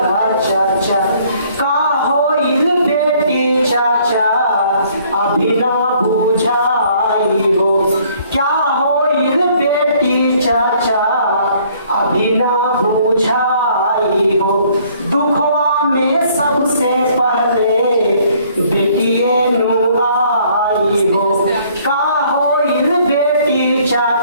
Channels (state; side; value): inverted; both; correlation -0.61